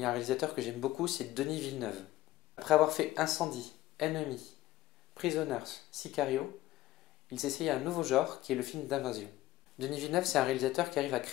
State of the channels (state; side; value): quieter; right; 16.2 dB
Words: y a un réalisateur que j'aime beaucoup, c'est Denis Villeneuve. Après avoir fait Incendie, Enemy, Prisoners, Sicario, il s'essaye à un nouveau genre qui est le film d'invasion. Denis Villeneuve, c'est un réalisateur qui arrive à